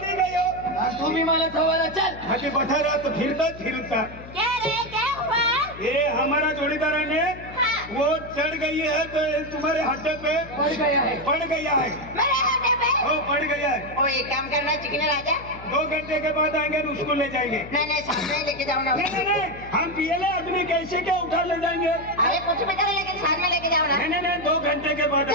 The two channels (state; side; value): noise; left; hum, 15 dB below the sound